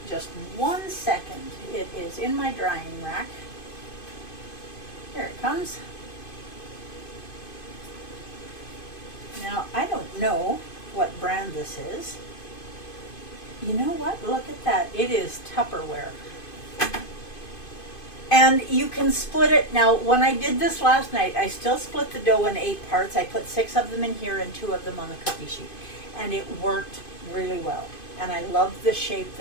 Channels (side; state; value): right; late; 2.5 ms